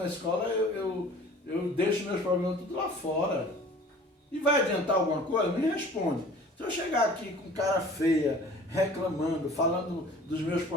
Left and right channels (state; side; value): normal; both; correlation 0.47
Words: escola, eu deixo meus problemas tudo lá fora. E vai adiantar alguma coisa? Me responde. Se eu chegar aqui com cara feia, reclamando, falando dos meus